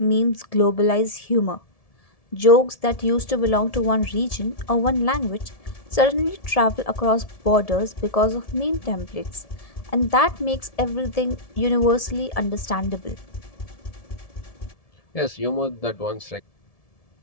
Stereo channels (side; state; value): right; late; 1.7 ms